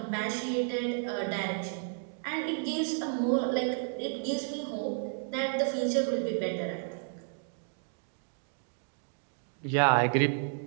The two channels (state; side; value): silent; left; 56 dB below the other